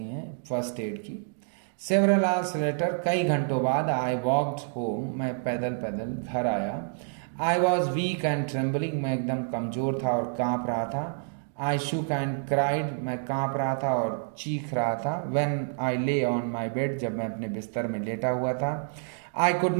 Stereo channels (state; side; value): silent; left; 59 dB below the other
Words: हैं फर्स्ट एड की। सेवरल आवर्स लेटर, कई घंटों बाद, आई वॉक्ड होम, मैं पैदल पैदल घर आया। I was weak and trembling, मैं एकदम कमज़ोर था और काँप रहा था। आई शुक एंड क्राइड, मैं कांप रहा था और चीख रहा था। व्हेन आई ले ऑन माई बेड, जब मैं अपने बिस्तर में लेटा हुआ था। I could